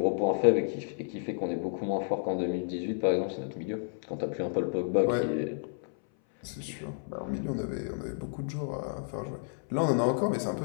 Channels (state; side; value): silent; right; 57 dB below the other